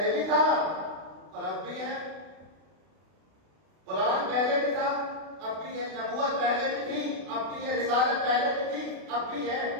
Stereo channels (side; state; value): left; late; 32 ms